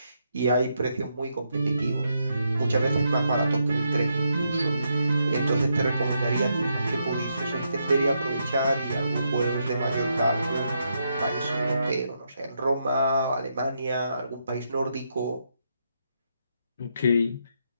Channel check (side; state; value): both; inverted; correlation -0.80